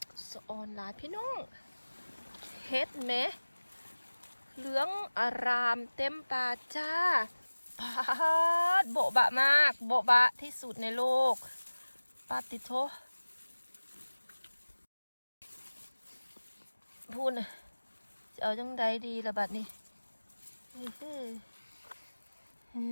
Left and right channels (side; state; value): both; inverted; correlation -1.00